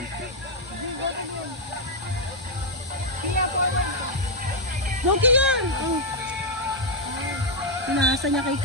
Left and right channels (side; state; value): both; normal; correlation -0.02